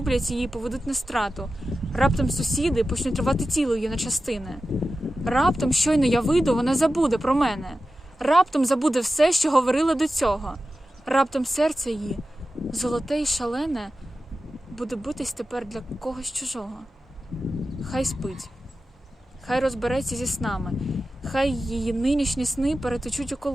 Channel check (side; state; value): both; normal; correlation 0.93